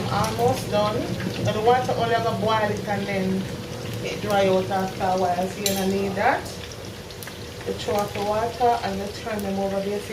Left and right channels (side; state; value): both; identical; correlation 1.00